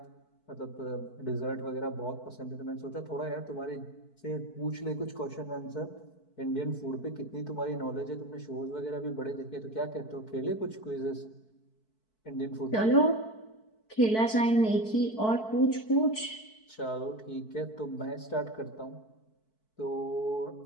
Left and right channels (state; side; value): late; right; 4.6 ms